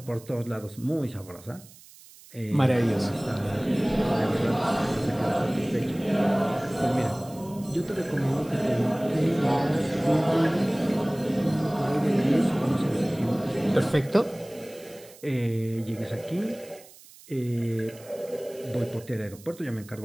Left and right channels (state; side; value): noise; right; hiss, 22 dB below the sound